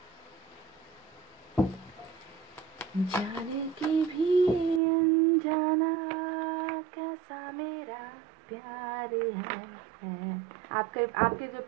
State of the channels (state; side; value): drops out; left; at 4.8 s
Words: जाने की भी अनजाना कैसा मेरा प्यार है। आपके आपके जो